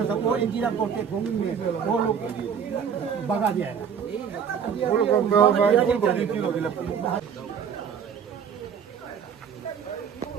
था, वो इंजीनियर करते भूमि में वो लोग भगा दिया है।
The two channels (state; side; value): quieter; left; 7.4 dB